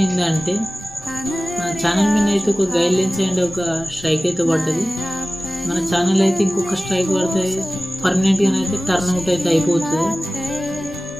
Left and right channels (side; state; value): left; noise; rumble, 28 dB below the sound